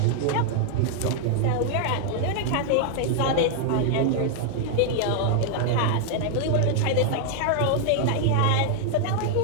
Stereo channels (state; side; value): different; both; correlation 0.00